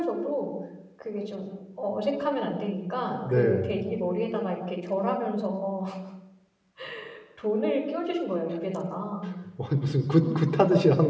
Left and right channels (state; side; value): identical; both; correlation 1.00